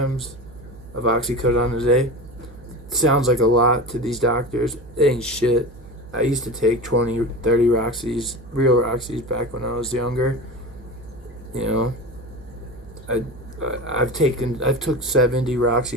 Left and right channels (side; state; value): right; noise; hum, 19 dB below the sound